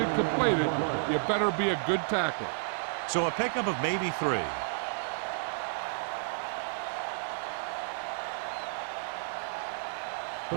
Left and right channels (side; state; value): left; silent; digital silence